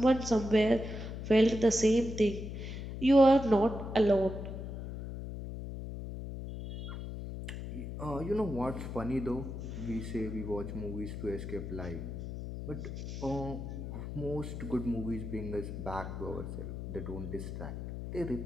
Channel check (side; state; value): left; noise; hum, 7 dB below the sound